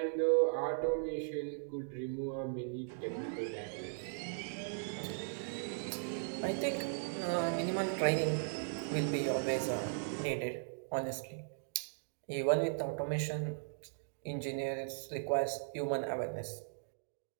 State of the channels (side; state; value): left; silent; digital silence